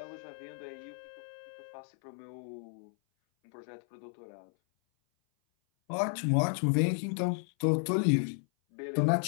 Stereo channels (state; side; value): silent; right; 56 dB below the other